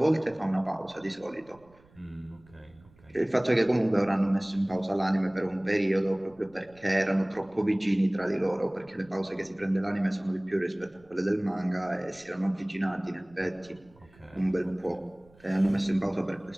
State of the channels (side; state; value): right; noise; rumble, 28 dB below the sound